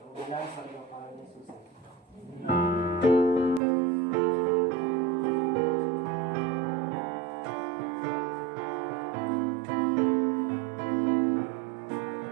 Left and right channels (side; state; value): left; drops out; at 3.6 s